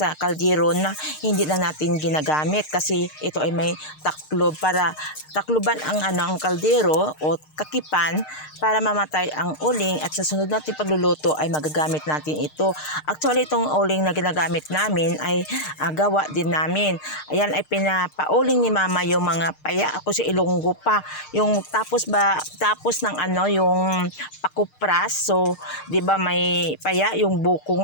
kaldero na hindi na natin ginagamit. Kasi ito ay may taklob para takluban ang kaldero o kakipan para mamatay ang uling at sa sunod natin pagluluto ay magagamit natin ito. Actually, itong uling na ginagamit namin ay gawa din namin. Ayan ay pinapauling ni Mama yung mga paya. Ako si Ilonggo pa. Yung tapos ng yung pakupras. So, 'di ba may paya yung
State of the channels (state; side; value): late; right; 6.6 ms